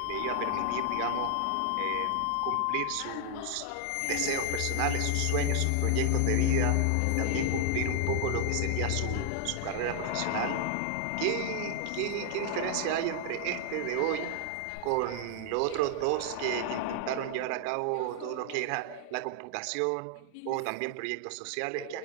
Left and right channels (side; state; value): both; different; correlation 0.00